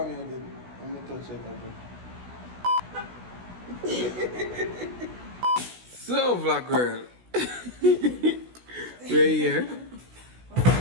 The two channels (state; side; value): late; left; 16 ms